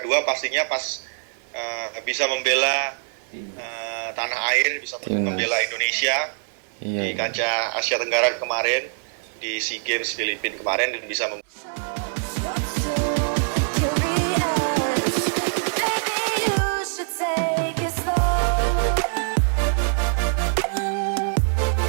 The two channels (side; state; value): left; silent; 59 dB below the other